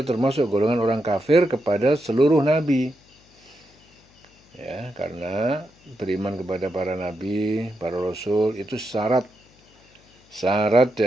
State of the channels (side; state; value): left; noise; hum, 30 dB below the sound